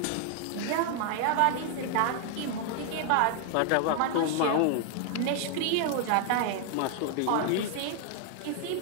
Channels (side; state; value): both; different; correlation 0.00